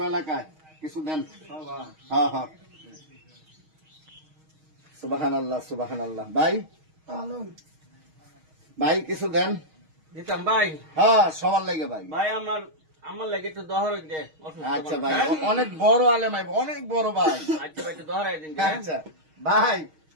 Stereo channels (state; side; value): late; left; 6.4 ms